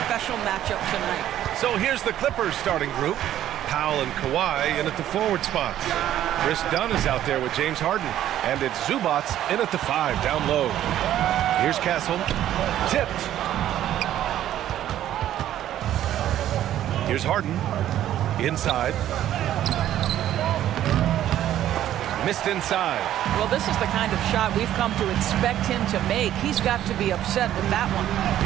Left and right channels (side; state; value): left; quieter; 12.1 dB